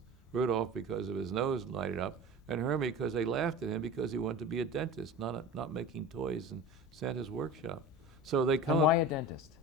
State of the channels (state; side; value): normal; both; correlation 0.34